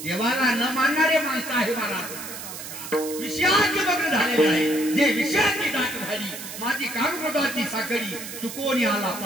देवाला न मानणारे माणसं आहे मला विषयाचे मग्न झालेले आहे जे विषयाची दाट झाली माझी कामकृताची साखळी चुकवून आला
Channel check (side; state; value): right; noise; hiss, 10 dB below the sound